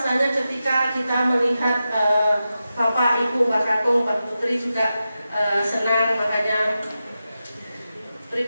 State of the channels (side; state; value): both; inverted; correlation -0.91